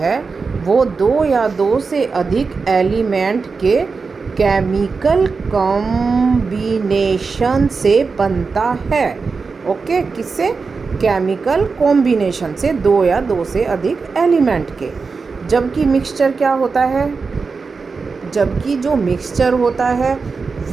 वो 2 या 2 से अधिक एलिमेंट के केमिकल कॉम्बिनेशन से बनता है। ओके, किससे? केमिकल कॉम्बिनेशन से, 2 या 2 से अधिक एलिमेंट के। जबकि मिक्सचर क्या होता है? जबकि जो मिक्सचर होता है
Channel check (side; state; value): left; quieter; 4.7 dB